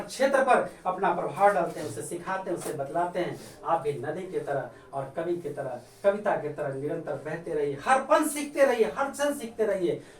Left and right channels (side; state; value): both; identical; correlation 1.00